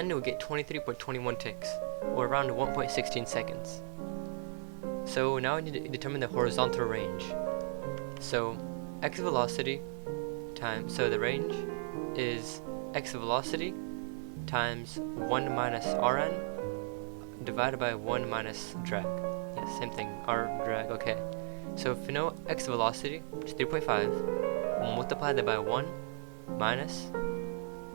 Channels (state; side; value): silent; left; digital silence